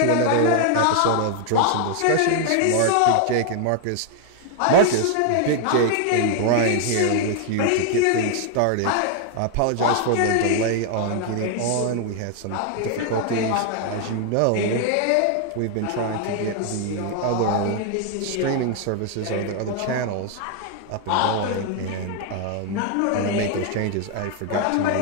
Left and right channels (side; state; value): both; different; correlation 0.00